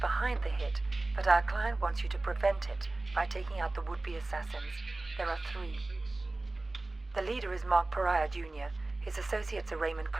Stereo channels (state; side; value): quieter; left; 3.0 dB